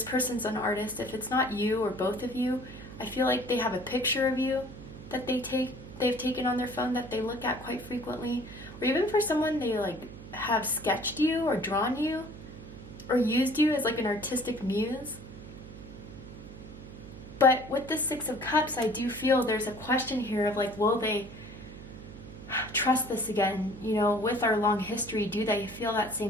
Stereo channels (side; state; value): right; noise; hum, 14 dB below the sound